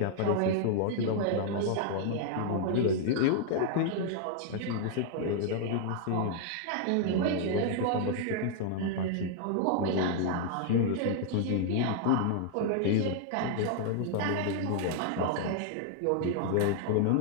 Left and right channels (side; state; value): both; different; correlation 0.00